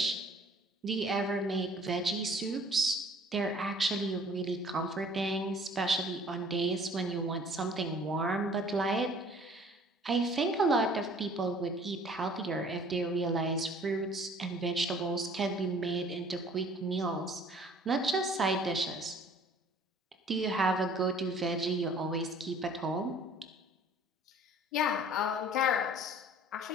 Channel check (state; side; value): normal; both; correlation 0.53